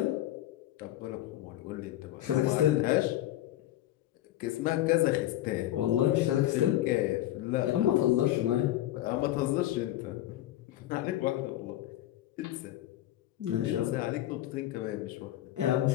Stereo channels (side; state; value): right; quieter; 14.0 dB